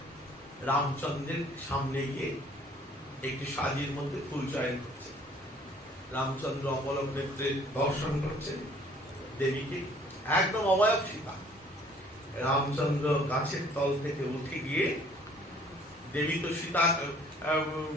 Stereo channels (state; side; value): normal; both; correlation 0.56